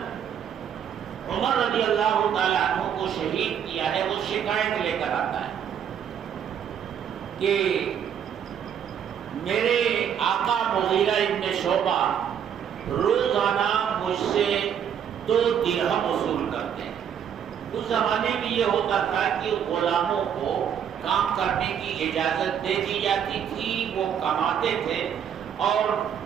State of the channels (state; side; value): quieter; left; 8.6 dB